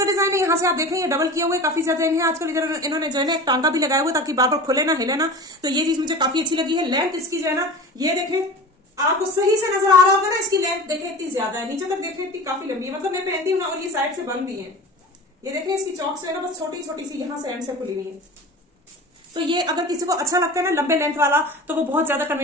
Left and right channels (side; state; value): both; normal; correlation 0.34